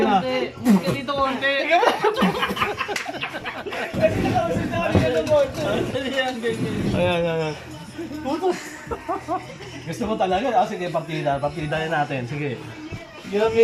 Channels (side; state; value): both; identical; correlation 1.00